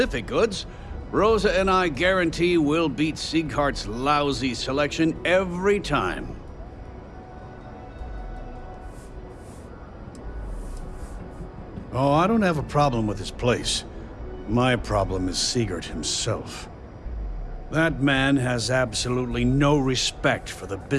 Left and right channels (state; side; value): identical; both; correlation 1.00